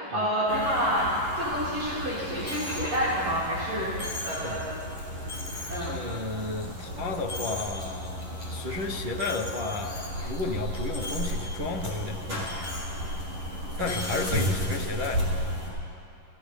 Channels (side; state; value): left; late; 11 ms